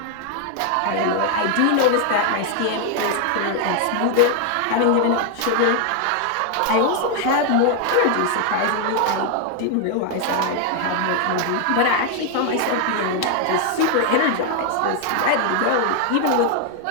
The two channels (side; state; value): both; different; correlation 0.00